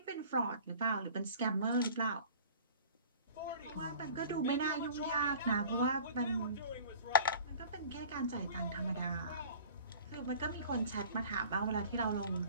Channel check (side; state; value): both; inverted; correlation -0.45